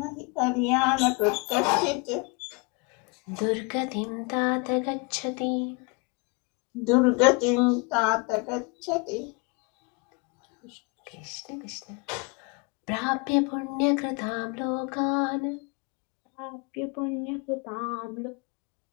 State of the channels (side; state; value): right; quieter; 31.1 dB